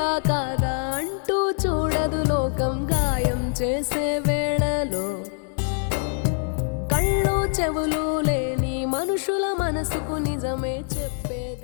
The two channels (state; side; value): silent; right; 62 dB below the other